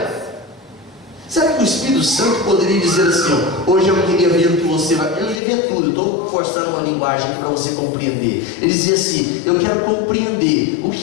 Será que o Espírito Santo poderia dizer assim, ó, hoje eu queria ver o que você vai... Eu não queria ver tudo, eu estou forçando uma linguagem para você compreender. Ele dizia assim, eu quero compreender o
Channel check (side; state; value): right; drops out; at 5.4 s